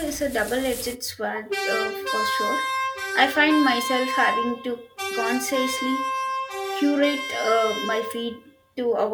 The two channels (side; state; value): both; identical; correlation 1.00